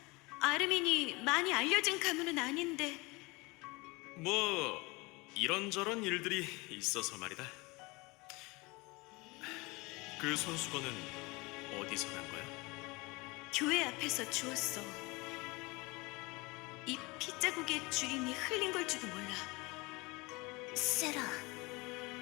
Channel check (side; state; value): right; quieter; 25.0 dB